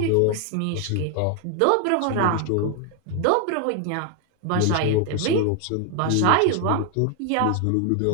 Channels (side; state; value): both; different; correlation 0.00